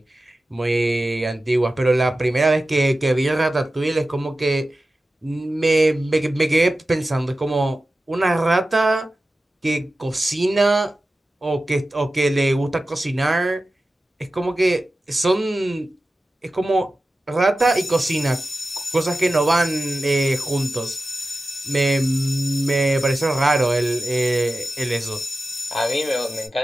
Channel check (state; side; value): normal; both; correlation 0.94